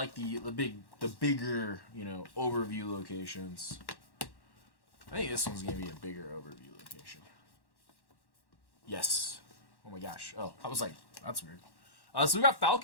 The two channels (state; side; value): late; right; 1.1 ms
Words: the bigger, you know, overview locations. I think this one's gonna be a bigger overview location. Yes. Oh my gosh. Oh, I was like, that's weird. So we got